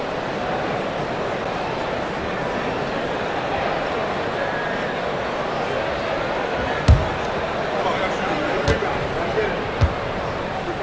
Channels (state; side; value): identical; both; correlation 1.00